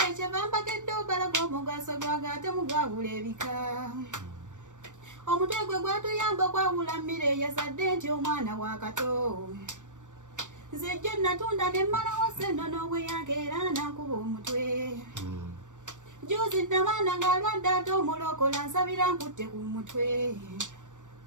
kyeva mbagedde obalaga omugaso gwago ate mugawula ebika. Omutwe gwe gwatuyamba okwawula mmere eyasadde nti omwana wa kato. Nze jjo natunda ne mmalawo ssente n'obweyange era nakuba omutwe. Juzi namaana ng'alwadde ate omulokola nsabira nkutte ku mutwe.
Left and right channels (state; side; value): late; left; 0.86 ms